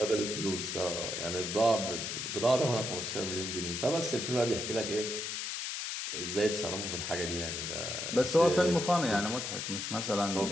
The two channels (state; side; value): noise; left; hiss, 4 dB below the sound